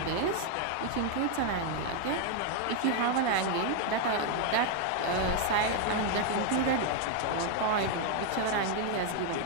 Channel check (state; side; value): different; both; correlation 0.01